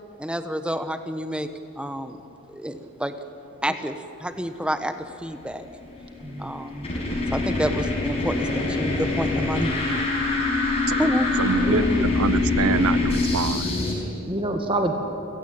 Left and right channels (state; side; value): normal; both; correlation 0.59